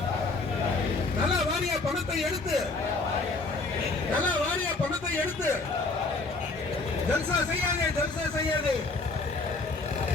நல வாரிய பணத்தை எடுத்து ஜல்சா செய்யாதே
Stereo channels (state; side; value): quieter; right; 3.6 dB